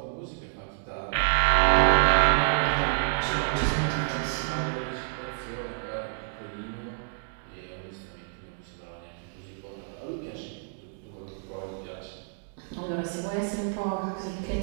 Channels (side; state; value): left; silent; digital silence